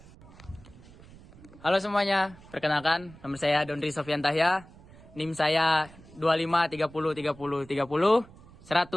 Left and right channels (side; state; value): right; noise; rumble, 22 dB below the sound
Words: Halo semuanya, perkenalkan nama saya Dondri Sofian Tahya, NIM saya 25 30 30 30